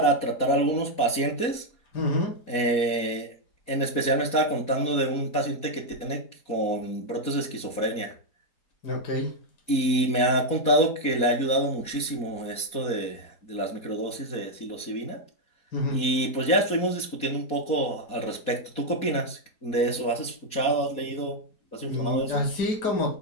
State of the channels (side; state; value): right; late; 4.2 ms